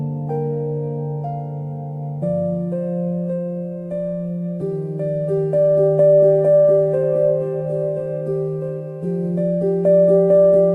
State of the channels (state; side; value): identical; both; correlation 1.00